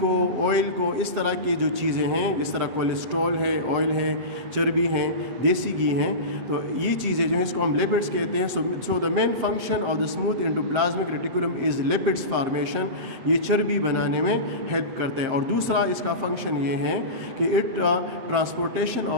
آئل کو، اس طرح کی جو چیزیں ہیں جس طرح کولیسٹرول ہے، آئل ہے، چربی ہے، دیسی گھی ہیں، تو یہ چیزیں جو ہیں اس کو ہم لیپڈز کہتے ہیں. So the main function of the smooth endoplasmic reticulum is lipids formation. یہ چربی بنانے میں ہیلپ کرتا ہے. اور دوسرا اس کا فنکشن یہ ہے کہ it transportation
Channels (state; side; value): late; left; 7.6 ms